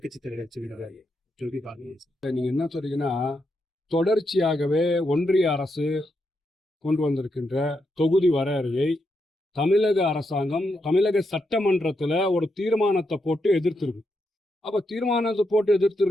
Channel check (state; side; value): normal; both; correlation 0.82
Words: தலைவர் சொல்லி பாருங்க. நீங்க என்ன சொல்றீங்கன்னா, தொடர்ச்சியாகவே ஒன்றிய அரசு கொண்டு வந்திருக்கின்ற தொகுதி வரையறையை தமிழக அரசாங்கம் தமிழக சட்டமன்றத்துல ஒரு தீர்மானத்தை போட்டு எதிர்த்திருக்கு. அப்ப தீர்மானத்தை போட்டு